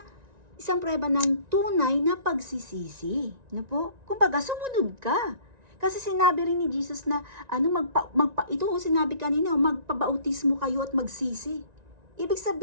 ng tunay na pagsisisi, no po? Kumbaga, sumunod ka. Kasi sinabi rin ni Jesus na, ito sinabi kanina, magpabautismo kayo at magsisi. Ibig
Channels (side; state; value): left; late; 1.9 ms